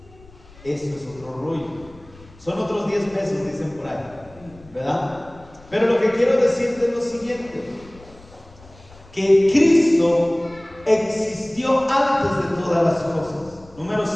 esto es otro rollo. Son otros 10 pesos, dicen por ahí, ¿verdad? Pero lo que quiero decirte es lo siguiente: que Cristo existió antes de todas las cosas. Número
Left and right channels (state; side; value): noise; left; rumble, 24 dB below the sound